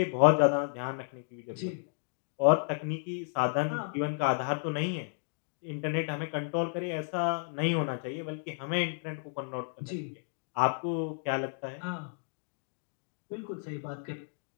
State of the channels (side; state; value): right; silent; digital silence